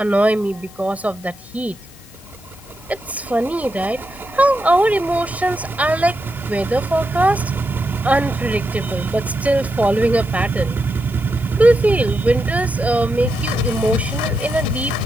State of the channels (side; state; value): both; normal; correlation 0.86